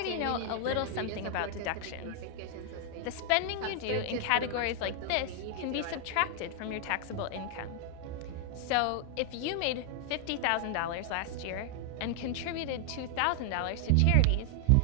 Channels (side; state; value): both; different; correlation 0.00